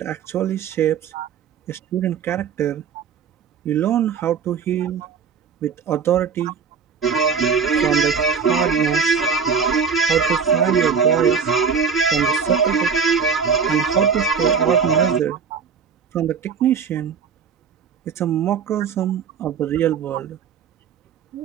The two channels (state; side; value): quieter; left; 6.3 dB